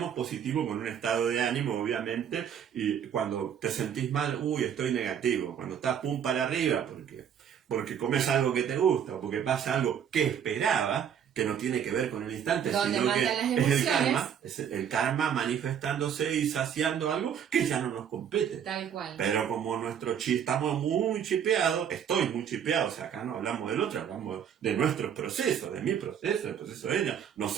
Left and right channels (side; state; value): left; quieter; 8.5 dB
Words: positivo con un estado de ánimo, obviamente, y cuando te sentís mal, estoy negativo. Cuando estás pum para arriba, porque comes algo que te gusta, o porque pasa algo que esperaba, que no tiene que ver con el instante, sino que es el karma manifestándose y saciando algo que ya no nos compete. Tal cual. Pero como nuestro estamos muy chipeados, estoy muy chipeado, o sea, acá no hablamos del otro, hablamos de nuestros procesos, de mi proceso, del proceso de ella, no